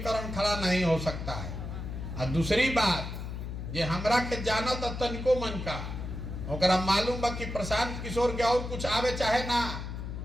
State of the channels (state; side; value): noise; left; hum, 6 dB below the sound